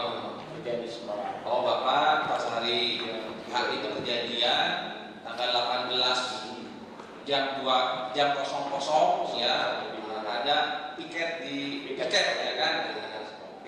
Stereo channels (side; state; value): both; identical; correlation 1.00